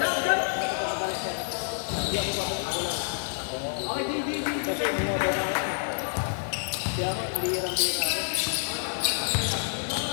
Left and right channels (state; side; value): silent; right; digital silence